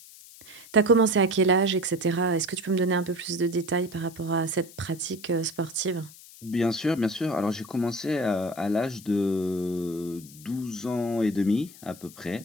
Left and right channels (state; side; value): noise; left; hiss, 20 dB below the sound